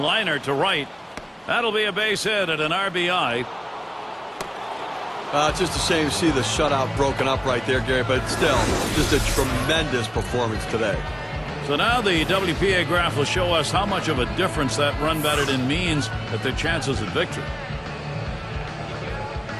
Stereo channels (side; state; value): both; identical; correlation 1.00